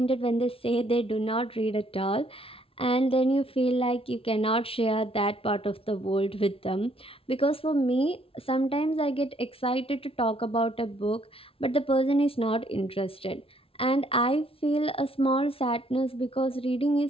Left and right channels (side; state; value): right; late; 0.26 ms